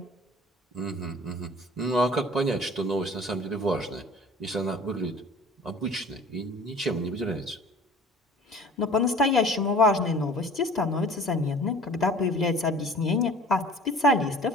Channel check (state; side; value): normal; both; correlation 0.45